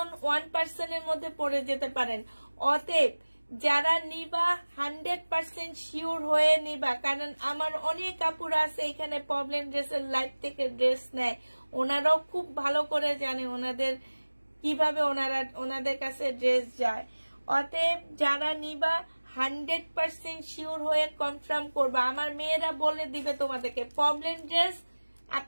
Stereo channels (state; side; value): inverted; both; correlation -1.00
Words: 1%-এর মধ্যে পড়ে যেতে পারেন। অতএব যারা নিবা 100% শিওর হয়ে নিবা, কারণ আমার অনেক আপুরা আছে এখানে প্রবলেম ড্রেসের লাইভ থেকে ড্রেস নেয়, ওনারাও খুব ভালো করে জানে ওনাদের কিভাবে ওনাদের কাছে ড্রেস যায়। অতএব যারা নিবা 100% শিওর হয়ে কনফার্ম করবা। আমার মেয়েরা বলে দিবে তোমাদেরকে প্রবলেম ড্রেস